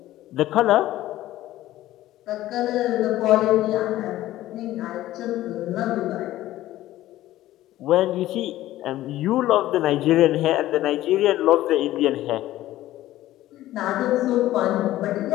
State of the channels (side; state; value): right; quieter; 14.9 dB